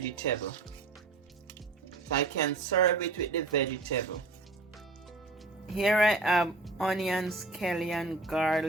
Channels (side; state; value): left; quieter; 3.3 dB